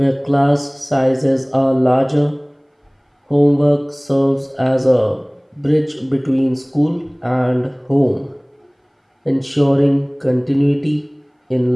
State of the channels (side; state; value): both; identical; correlation 1.00